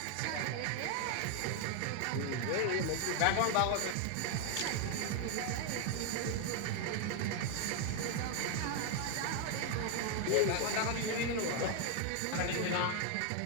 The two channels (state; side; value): different; both; correlation 0.00